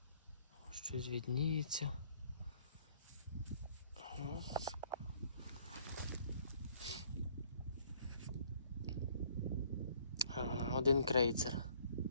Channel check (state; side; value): inverted; both; correlation -0.60